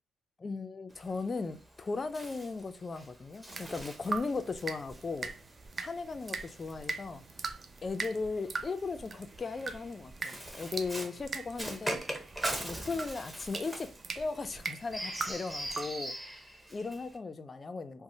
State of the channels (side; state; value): both; normal; correlation 0.88